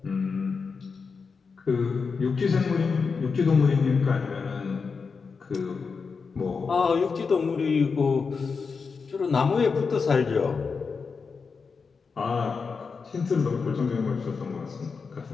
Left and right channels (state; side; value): quieter; right; 5.1 dB